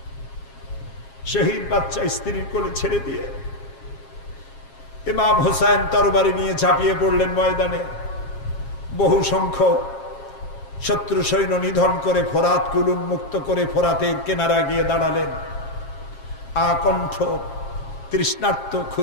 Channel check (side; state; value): right; late; 7.4 ms